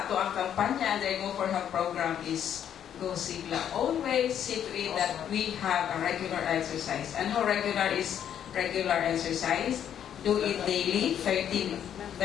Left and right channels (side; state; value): right; quieter; 9.5 dB